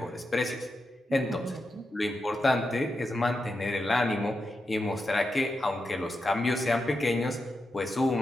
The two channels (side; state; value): both; normal; correlation 0.88